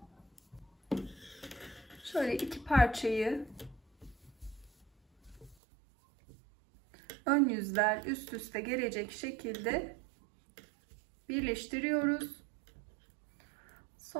Şöyle iki parçayı ön yüzler üst üste gelecek şekilde birleştiriyoruz.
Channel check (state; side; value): drops out; left; at 5.6 s